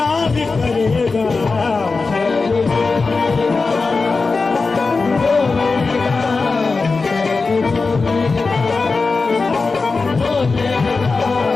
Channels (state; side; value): quieter; right; 4.1 dB